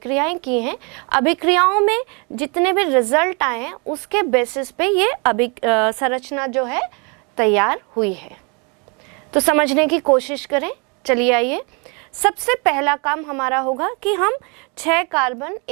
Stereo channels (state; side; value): quieter; left; 32.7 dB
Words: की हैं। अभिक्रियाओं में जितने भी रिजल्ट आए हैं उसके बेसिस पे ये संरचना जो है तैयार हुई है। तो समझने की कोशिश करें। चलिए आइए, सबसे पहला काम हमारा होगा कि हम 6 कार्बन